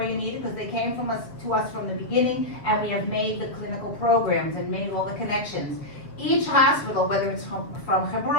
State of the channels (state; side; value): late; right; 7.1 ms